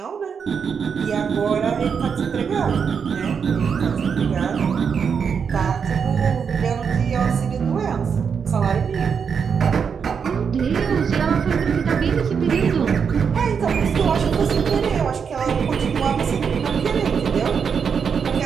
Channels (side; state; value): left; quieter; 6.5 dB